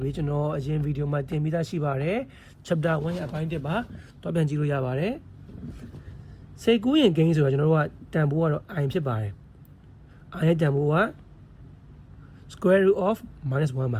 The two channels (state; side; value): identical; both; correlation 1.00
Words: တွေကျွန်တော်အရင်ဗီဒီယိုမှာတင်ပြီးသားရှိပါတယ် chapter 1ရဲ့အပိုင်း1ပါတော့ပြန်ကြည့်လို့ရပါတယ်စိတ်ကူးရင်ကိန်းဆိုတာကျွန်တော်တို့ကတန်ဖိုးကတော့ i ဖြစ်ပါတယ် i ရဲ့တန်ဖိုးက square root of -1 ပါ